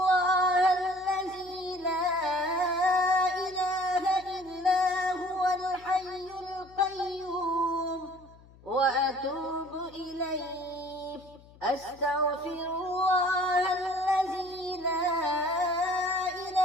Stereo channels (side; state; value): left; noise; hum, 24 dB below the sound